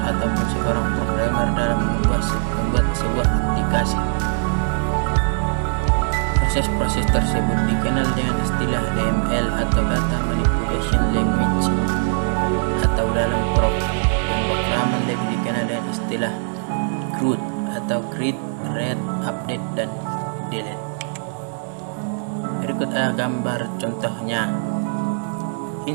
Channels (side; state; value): left; silent; 65 dB below the other